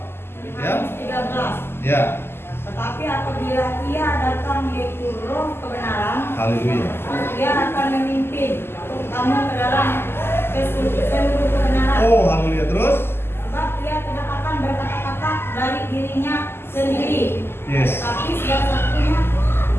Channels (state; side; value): late; right; 0.12 ms